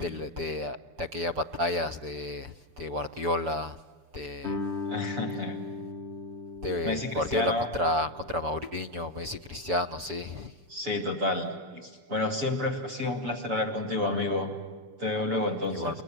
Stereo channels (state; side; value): late; left; 6.9 ms